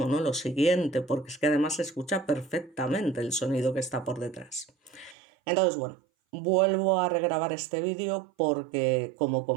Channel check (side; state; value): left; drops out; at 5.2 s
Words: ¿no? Lo siguiente, porque es que además se escucha perfectamente el sonido que está por detrás. Entonces, bueno, vuelvo a regrabar este vídeo porque, como